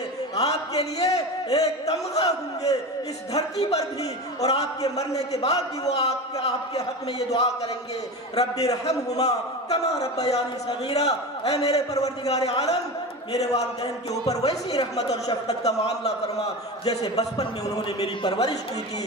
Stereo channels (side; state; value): both; normal; correlation 0.27